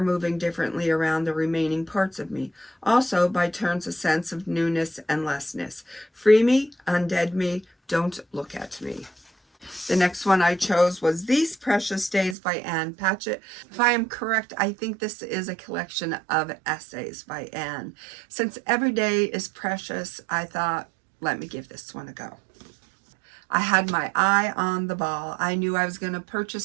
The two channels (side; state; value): left; drops out; at 12.4 s